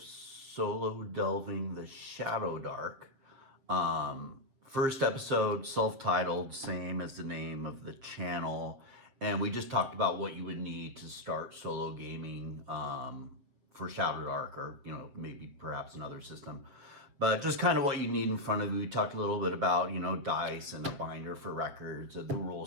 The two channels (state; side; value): late; left; 7.6 ms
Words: Delving the ShadowDark. First episode, self-titled, same as the name of the channel, and we just talked about what you would need to start solo gaming for ShadowDark, or maybe perhaps another system. But just kind of what you need in front of you. We talked a little bit about, dice and a binder for records, the rule